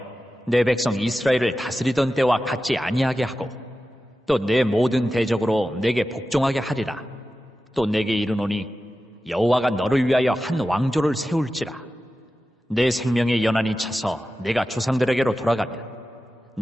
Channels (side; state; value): both; normal; correlation 0.93